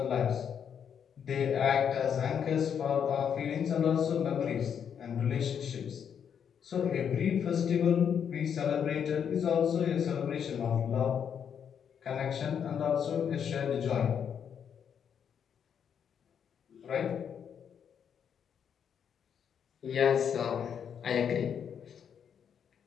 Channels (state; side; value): quieter; right; 7.9 dB